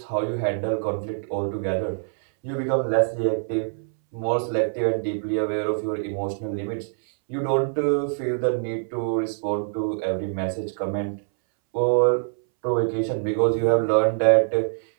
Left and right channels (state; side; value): silent; left; 62 dB below the other